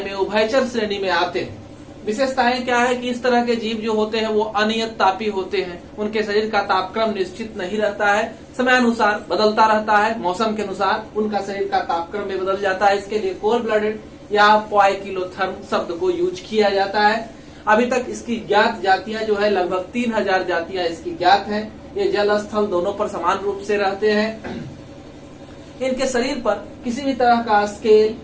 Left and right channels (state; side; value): identical; both; correlation 1.00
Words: में उभयचर श्रेणी में आते हैं। विशेषताएं क्या है कि इस तरह के जीव जो होते हैं वो अनियत तापी होते हैं, उनके शरीर का तापक्रम निश्चित नहीं रहता है, समयानुसार बदलता रहता है, मौसम के अनुसार उनका शरीर का तापक्रम भी बदल जाता है। इसके लिए कोल्ड ब्लडेड या पोइकिलोथर्म शब्द को यूज किया जाता है। अभी तक इसकी ज्ञात जातियां जो है लगभग 3000 जातियां इसकी ज्ञात है। ये जल स्थल दोनों पर समान रूप से रहते हैं। इनके शरीर पर किसी भी तरह का स्केल,